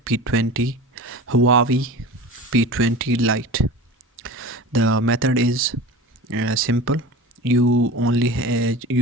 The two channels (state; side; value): normal; both; correlation 0.35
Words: P20 Huawei P20 Lite. The method is simple.